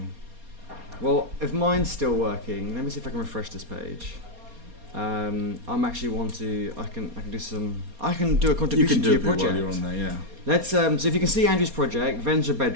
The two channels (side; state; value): left; late; 4.2 ms